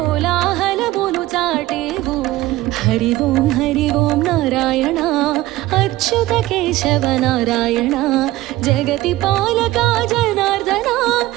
చాటేవు हरि ओं नारायण अच्युत केशव नारायण जगति पालका जनार्दन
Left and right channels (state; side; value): quieter; left; 17.1 dB